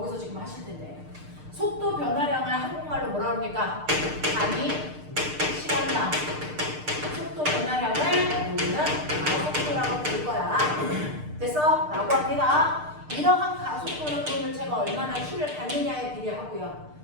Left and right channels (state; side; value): late; left; 6.6 ms